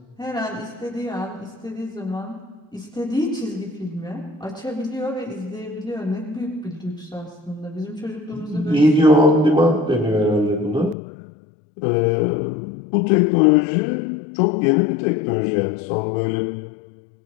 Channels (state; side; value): drops out; right; at 11.0 s